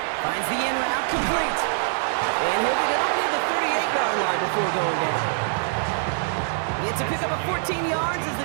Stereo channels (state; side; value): silent; left; 62 dB below the other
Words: Finds the in route complete. And he'll get it up near the 38-yard line before going down. He gets to pick up a 14 yards as